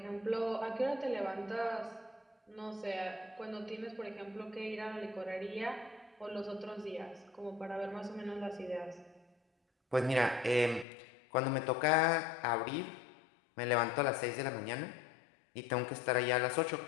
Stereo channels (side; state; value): right; drops out; at 10.9 s